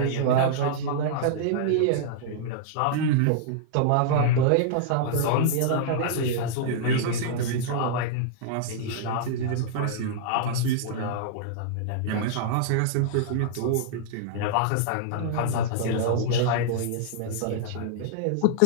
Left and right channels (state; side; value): different; both; correlation -0.02